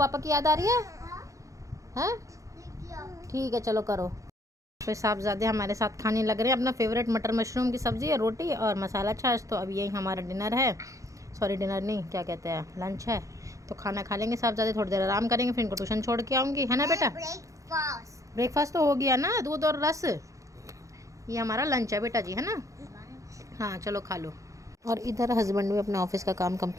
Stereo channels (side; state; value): left; late; 0.15 ms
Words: की याद आ रही है? ठीक है, चलो करो। फिर साहबजादे हमारे साथ खाने लग रहे हैं अपना फेवरेट मटर मशरूम की सब्ज़ी है, रोटी और मसाला छाछ। तो अब यही हमारा डिनर है, सॉरी डिनर नहीं, क्या कहते हैं, लंच है। तो खाना खा लेंगे साहबजादे, थोड़ी देर आराम करेंगे, फिर इनको ट्यूशन छोड़ के आऊँगी, है ना बेटा? ब्रेकफास्ट तो हो गया ना, दूध और रस। ये हमारा लंच है बेटा जी, है ना? हाँ चलो खा लो। और इधर हस्बैंड भी अपने ऑफिस का काम